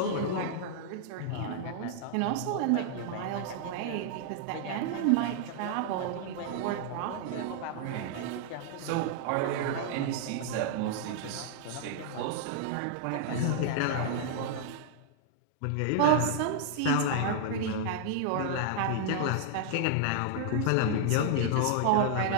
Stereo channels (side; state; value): both; different; correlation -0.01